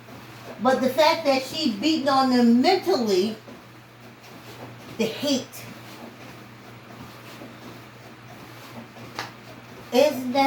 But the fact that she's beating on them mentally, the hate. Isn't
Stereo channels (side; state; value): both; identical; correlation 1.00